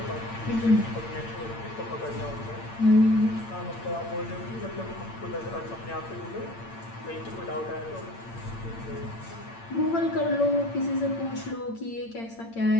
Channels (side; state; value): right; late; 8.8 ms